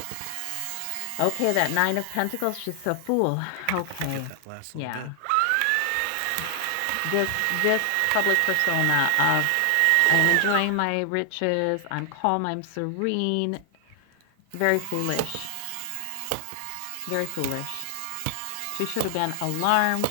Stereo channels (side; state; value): both; different; correlation 0.00